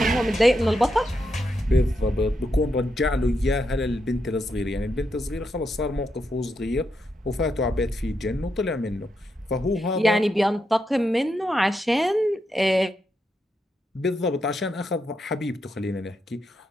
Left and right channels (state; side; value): normal; both; correlation 0.83